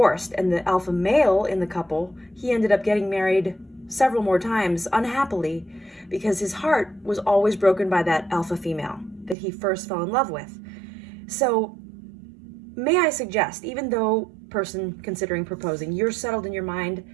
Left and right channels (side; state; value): left; drops out; at 9.3 s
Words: And the alpha male in the couple, he ended up getting married several more times unhappily because his heart was always broken by that alpha female that he first fell in love with. So may I suggest, even though person considering proposing, you're settled in your